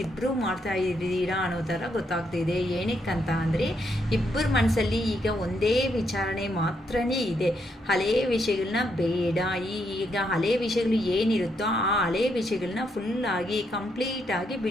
ಇಬ್ಬರು ಮಾಡ್ತಾ ಇದ್ದೀರಾ ಅನ್ನೋ ಥರ ಗೊತ್ತಾಗ್ತಿದೆ. ಏನಕ್ಕಂತ ಅಂದರೆ ಇಬ್ಬರ ಮನಸ್ಸಲ್ಲಿ ಈಗ ಒಂದೇ ವಿಚಾರಣೆ ಮಾತ್ರನೇ ಇದೆ. ಹಳೆಯ ವಿಷಯಗಳನ್ನ ಬೇಡ, ಈಗ ಹಳೆಯ ವಿಷಯಗಳು ಏನಿರುತ್ತೋ ಆ ಹಳೆಯ ವಿಷಯಗಳನ್ನ ಫುಲ್ಲಾಗಿ ಕಂಪ್ಲೀಟಾಗಿ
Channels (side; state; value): both; normal; correlation 0.77